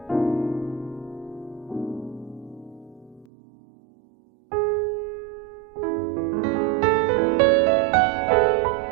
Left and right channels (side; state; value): left; drops out; at 3.2 s